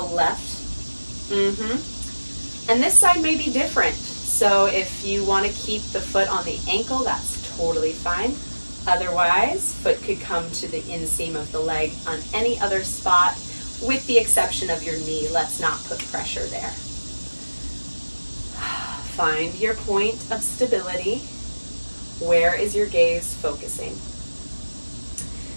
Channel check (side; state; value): both; inverted; correlation -1.00